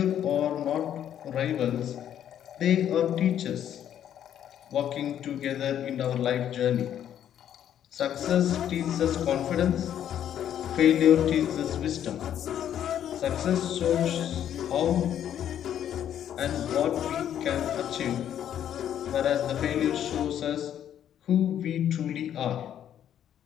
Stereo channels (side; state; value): right; quieter; 10.2 dB